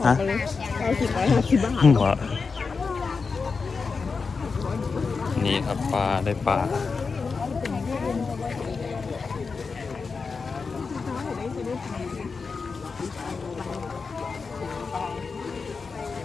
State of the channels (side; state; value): right; quieter; 4.8 dB